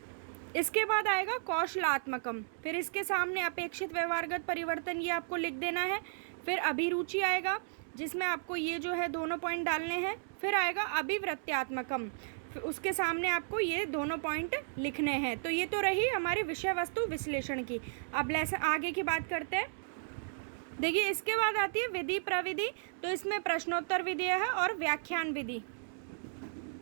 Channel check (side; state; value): left; silent; digital silence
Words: इसके बाद आएगा कौशलात्मकम। फिर इसके सामने अपेक्षित व्यवहारगत परिवर्तन, ये आपको लिख देना है। फिर अभिरुचि आएगा, जिसमें आपको ये जो है दोनों पॉइंट डालने हैं। फिर आएगा अभिवृत्त्यात्मकम, उसके सामने आपको ये दोनों पॉइंट लिखने हैं। तो ये तो रही हमारी विषय वस्तु विश्लेषण की। अब लेसन आगे की बात करते हैं। देखिए, इसके बाद आती है विधि प्रविधि। तो इसमें प्रश्नोत्तर विधि है और व्याख्यान विधि।